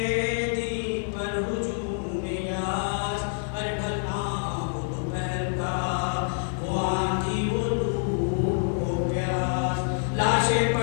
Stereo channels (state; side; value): silent; right; digital silence